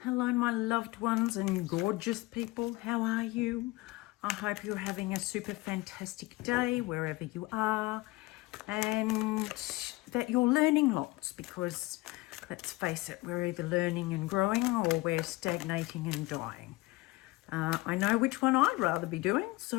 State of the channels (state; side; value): quieter; right; 20.8 dB